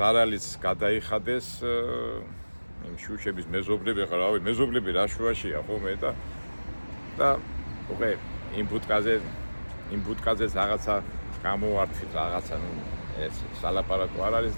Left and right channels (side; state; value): both; inverted; correlation -1.00